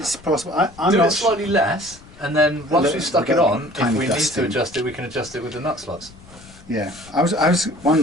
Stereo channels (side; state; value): left; noise; rumble, 22 dB below the sound